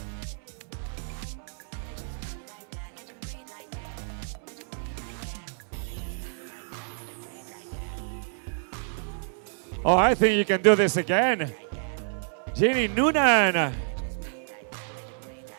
Oh, I think you can do this again. Jeannie Noonan.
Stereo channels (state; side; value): silent; left; 59 dB below the other